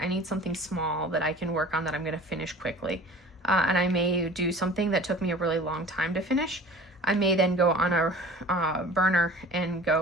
need something small that I can work on that I'm going to finish quickly. And I may do something that took me a really long time to finish. I may then go on a burner and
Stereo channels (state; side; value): normal; both; correlation 0.43